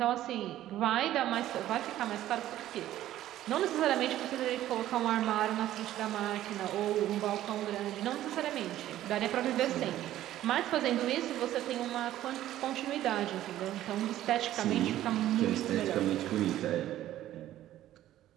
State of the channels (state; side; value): quieter; left; 13.4 dB